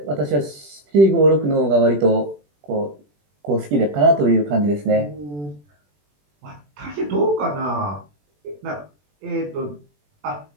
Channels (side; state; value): left; late; 20 ms